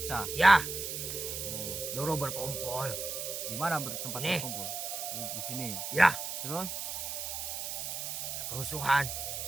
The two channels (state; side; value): noise; right; hiss, 4 dB below the sound